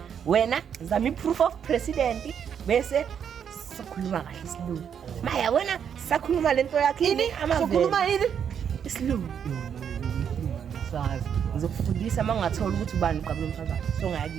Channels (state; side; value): quieter; left; 8.0 dB